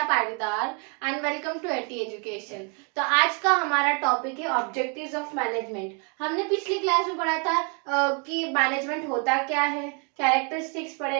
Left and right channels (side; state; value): left; quieter; 37.1 dB